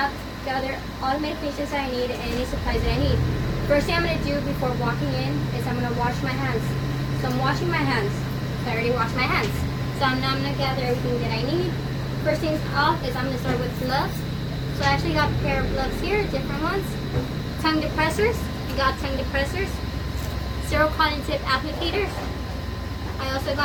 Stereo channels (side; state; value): both; identical; correlation 1.00